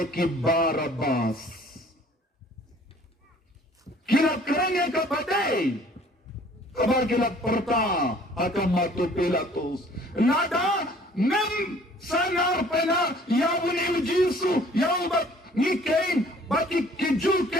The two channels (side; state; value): both; normal; correlation 0.54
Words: Barabas. Kirap kerengnya kapatay. Kabar kirap parta. Akam matu Pilatus. Nada. Nem sanar pena yawuni ujisu yawbat ni kain baki kiju